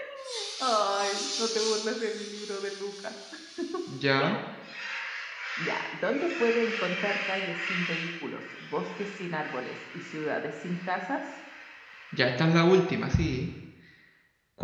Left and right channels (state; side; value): identical; both; correlation 1.00